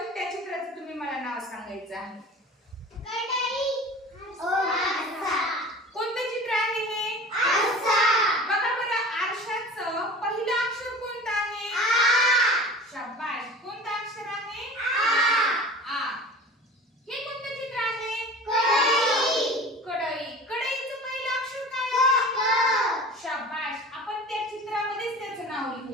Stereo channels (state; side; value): normal; both; correlation 0.39